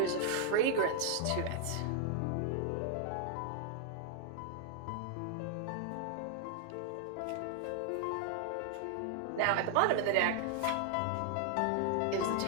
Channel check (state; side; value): different; both; correlation 0.00